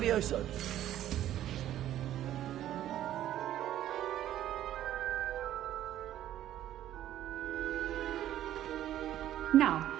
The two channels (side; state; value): left; quieter; 12.4 dB